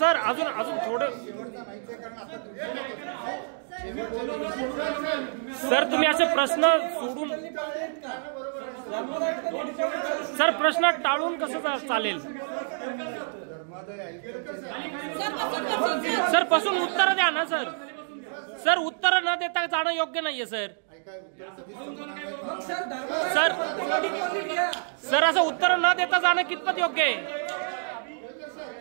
अजून अजून थोडं सर तुम्ही असे प्रश्न सोडून सर प्रश्न टाळून कसं चालेल सर पासून उत्तर द्या ना सर सर उत्तर न देता जाणं योग्य नाहीये सर सर सर असं उत्तर न देता जाणं कितपत योग्य आहे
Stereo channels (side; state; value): left; silent; digital silence